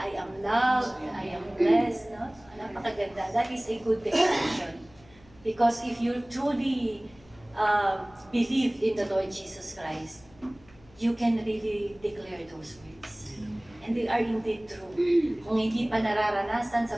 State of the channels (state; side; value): noise; left; hum, 26 dB below the sound